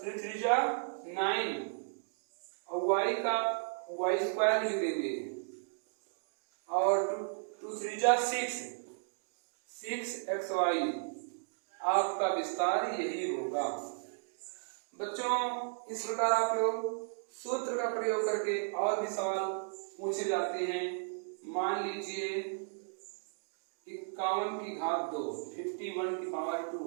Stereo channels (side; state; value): left; silent; digital silence